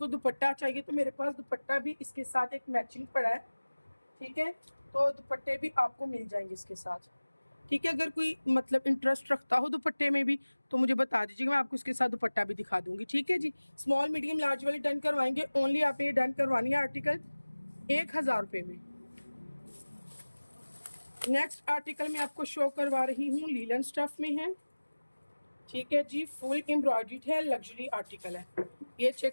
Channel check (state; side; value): inverted; both; correlation -1.00